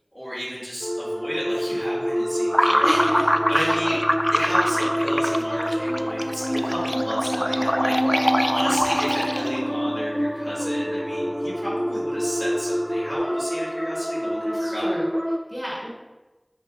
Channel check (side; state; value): both; identical; correlation 1.00